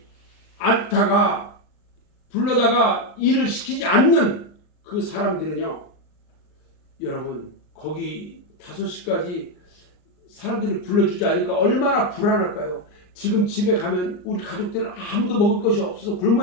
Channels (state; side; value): late; right; 38 ms